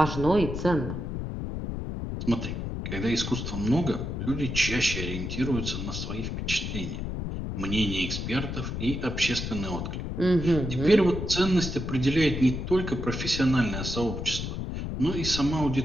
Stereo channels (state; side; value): noise; left; rumble, 4 dB below the sound